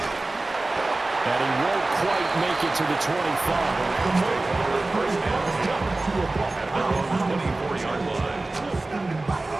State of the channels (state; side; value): quieter; left; 3.0 dB